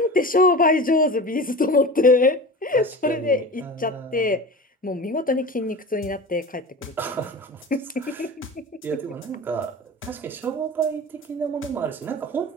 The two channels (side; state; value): both; normal; correlation 0.33